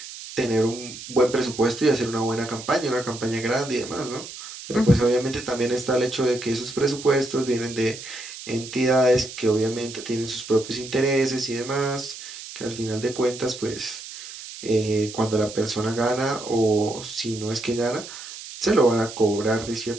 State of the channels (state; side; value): noise; right; hiss, 12 dB below the sound